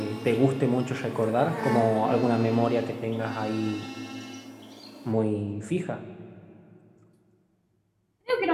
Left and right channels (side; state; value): both; identical; correlation 1.00